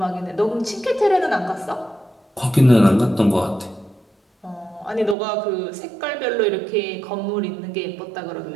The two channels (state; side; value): drops out; left; at 5.2 s